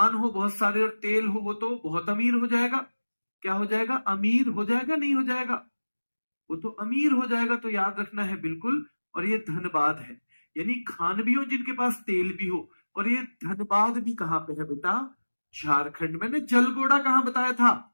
हो बहुत सारे और तेल हो, वो तो बहुत अमीर हो जाएगा। क्या हो जाएगा? अमीर हो जाएगा, नहीं हो जाएगा? वो तो अमीर हो जाएगा। तो याद रखना है बिल्कुल। और ये धनबाद है, यानी खान भी हो जिनके पास तेल भी हो। और ये धनबाद भी कहां पे है बेटा? झारखंड। मैंने जलगोड़ा कहां बताया था?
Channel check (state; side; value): inverted; both; correlation -1.00